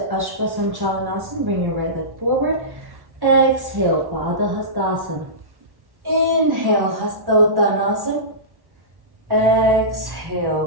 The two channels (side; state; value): left; late; 1.1 ms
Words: Ashvasanchalanasana. Bring your right leg forward. Exhale, Pada Hastasana. Inhale, Hasta Uttanasana.